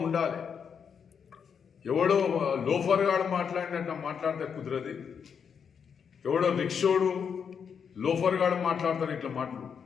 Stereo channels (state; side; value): quieter; right; 6.9 dB